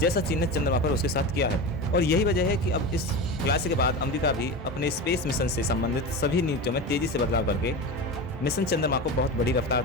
चीन ने चंद्रमा पर उसके साथ किया है, और यही वजह है कि अब इस खुलासे के बाद अमेरिका भी अपने स्पेस मिशन से संबंधित सभी नीतियों में तेजी से बदलाव करके मिशन चंद्रमा को बहुत बड़ी रफ्तार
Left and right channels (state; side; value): normal; both; correlation 0.25